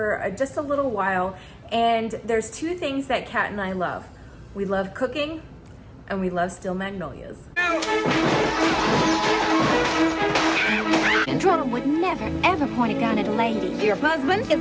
just a little while, and there's two things that Kat and I love. We love cooking and we love steel magnolias. Controller would never, ever point a gun at a lady. Your husband is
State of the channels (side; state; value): both; identical; correlation 1.00